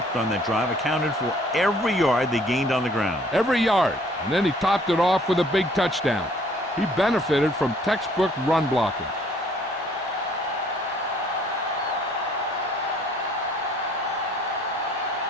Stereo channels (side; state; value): both; normal; correlation 0.59